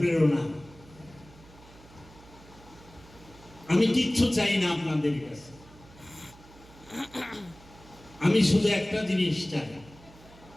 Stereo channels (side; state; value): right; noise; hum, 22 dB below the sound